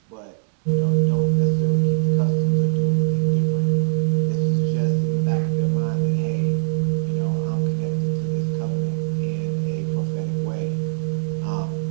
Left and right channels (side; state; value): left; silent; digital silence